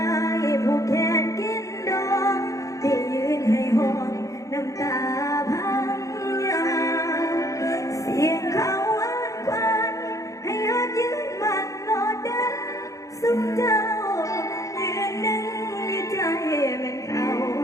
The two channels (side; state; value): right; late; 0.16 ms